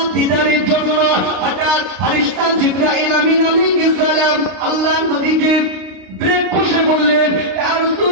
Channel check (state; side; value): late; left; 32 ms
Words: দিদারের জন্য। হঠাৎ ফেরেশতা জিবরাইল আমিন আলাইহিস সালাম আল্লাহর নবীকে ব্রেক কষে বললেন, ইয়া